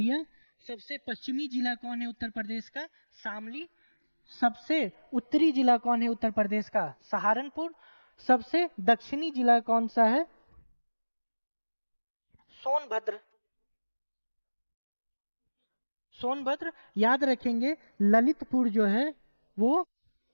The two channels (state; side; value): inverted; both; correlation -1.00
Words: सबसे पश्चिमी जिला कौन है उत्तर प्रदेश का, शामली। सबसे उत्तरी जिला कौन है उत्तर प्रदेश का, सहारनपुर। सबसे दक्षिणी जिला कौन सा है, सोनभद्र। सोनभद्र याद रखेंगे। ललितपुर जो है वो